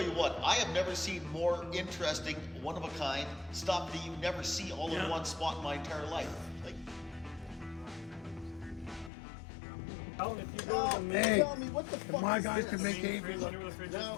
you what, I have never seen more interesting, one-of-a-kind stuff that you never see all in one spot in my entire life. Like, Hey, tell me what the fuck my is guys this? can make Avery look. No,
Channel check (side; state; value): right; drops out; at 9.1 s